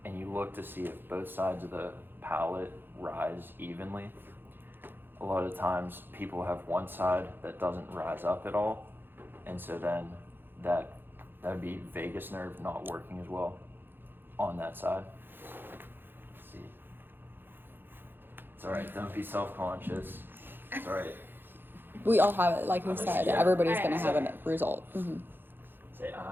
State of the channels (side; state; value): left; late; 0.099 ms